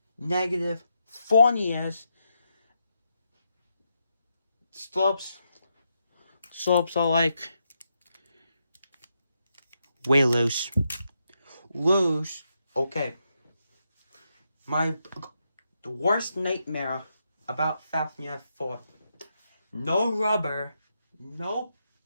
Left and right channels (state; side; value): inverted; both; correlation -0.83